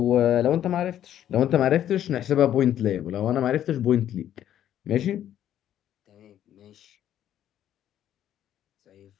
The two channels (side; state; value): right; quieter; 11.1 dB